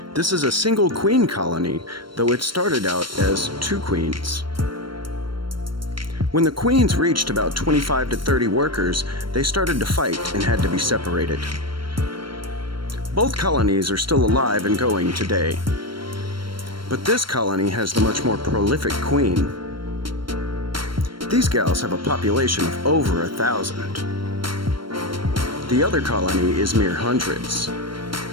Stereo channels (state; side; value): late; left; 0.73 ms